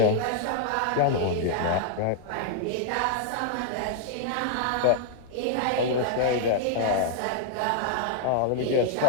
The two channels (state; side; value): different; both; correlation 0.00